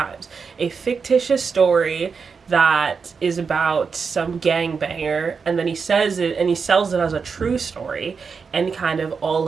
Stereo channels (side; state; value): left; quieter; 5.5 dB